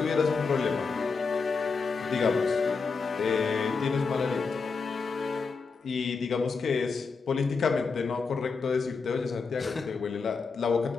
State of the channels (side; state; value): right; quieter; 4.8 dB